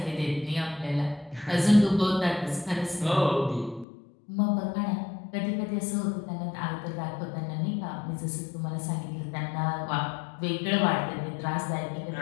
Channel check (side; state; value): right; drops out; at 3.9 s